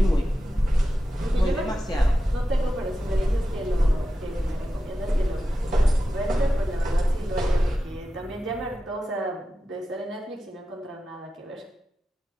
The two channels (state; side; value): normal; both; correlation 0.92